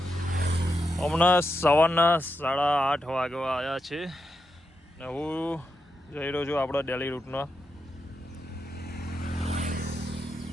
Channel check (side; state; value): both; normal; correlation 0.86